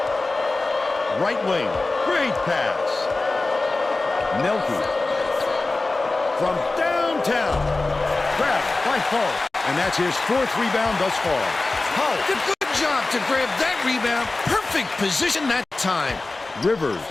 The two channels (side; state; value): right; quieter; 3.3 dB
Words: Right wing. Great pass. Nelke. From downtown. Grabbed by Hull. And that's his 4th rebound thus far. Hull did a good job to grab that rebound. Perfect position that time. Rivers